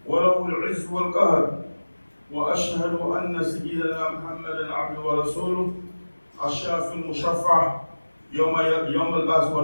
وله العز والقهر. وأشهد أن سيدنا محمدا عبده ورسوله الشافي المشفع يوم البعث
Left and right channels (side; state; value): both; inverted; correlation -1.00